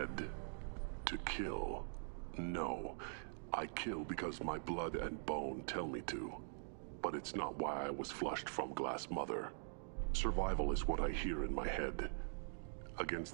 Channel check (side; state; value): left; silent; digital silence